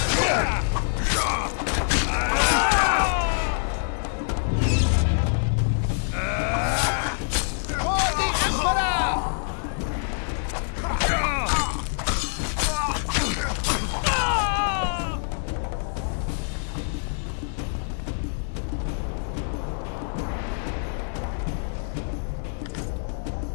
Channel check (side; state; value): right; silent; digital silence